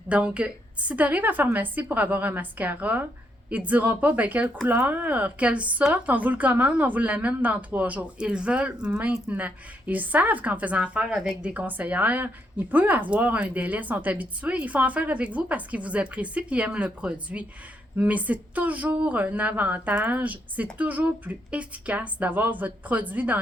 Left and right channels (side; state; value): both; normal; correlation 0.76